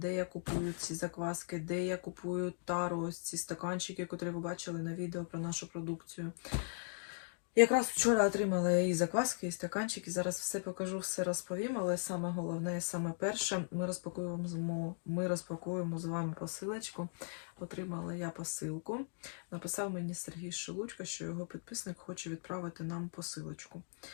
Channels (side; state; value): right; silent; digital silence